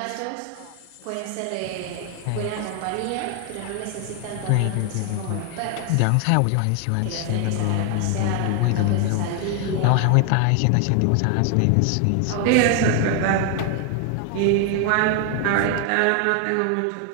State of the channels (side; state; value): both; different; correlation 0.00